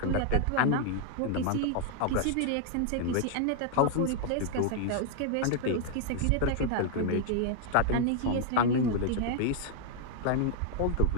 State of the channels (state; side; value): different; both; correlation 0.00